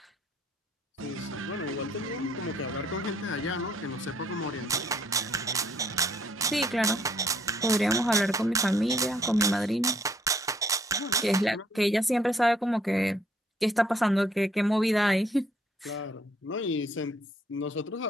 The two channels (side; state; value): both; normal; correlation 0.65